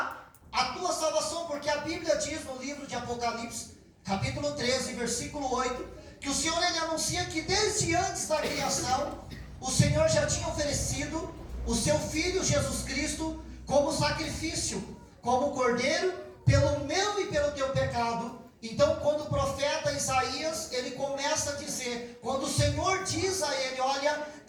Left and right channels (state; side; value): identical; both; correlation 1.00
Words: a tua salvação, porque a Bíblia diz no livro de Apocalipse, capítulo 13, versículo 8, que o Senhor ele anuncia que desde antes da criação, o Senhor já tinha oferecido o seu Filho Jesus Cristo como sacrifício, como cordeiro, pelo meu e pelo teu pecado. Então quando o profeta Isaías, ele começa a dizer, quando o Senhor diz a ele, olha,